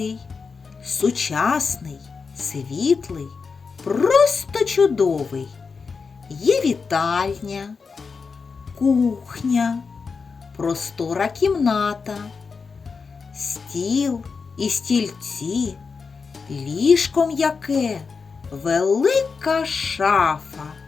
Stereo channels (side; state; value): right; quieter; 5.1 dB